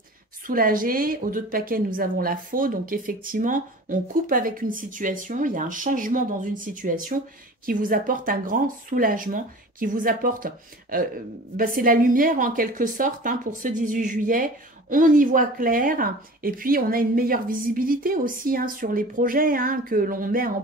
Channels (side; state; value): both; normal; correlation 0.40